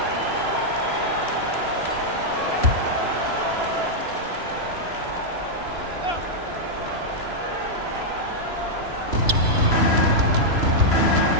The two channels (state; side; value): late; left; 3.0 ms